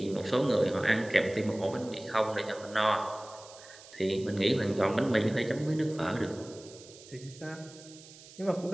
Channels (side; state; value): right; noise; hiss, 20 dB below the sound